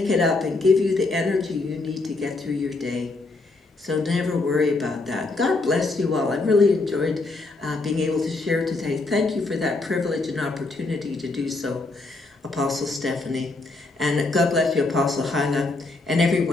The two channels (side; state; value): right; quieter; 3.4 dB